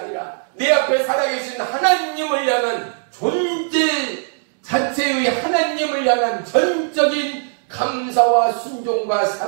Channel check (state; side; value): silent; left; digital silence